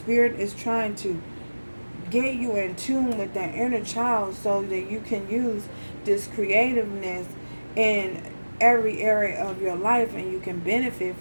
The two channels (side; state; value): both; inverted; correlation -1.00